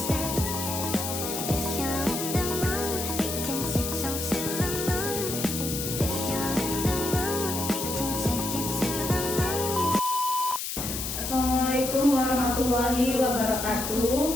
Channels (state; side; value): noise; left; hiss, 4 dB below the sound